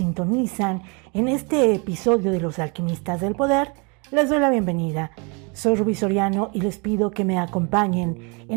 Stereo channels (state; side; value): quieter; left; 32.6 dB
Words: en este episodio de Los Alquimistas del Poder, les doy la bienvenida. Soy Rubí Soriano y les pido que me acompañen